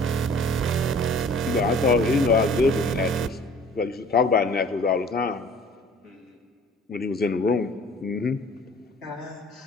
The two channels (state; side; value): normal; both; correlation 0.50